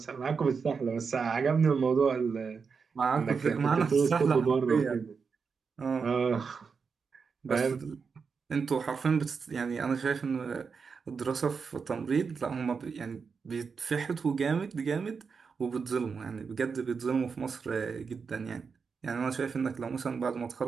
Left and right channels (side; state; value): left; quieter; 5.5 dB